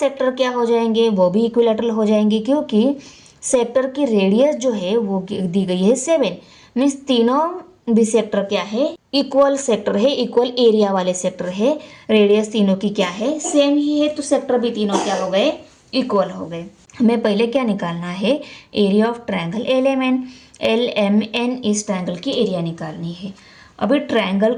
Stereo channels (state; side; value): identical; both; correlation 1.00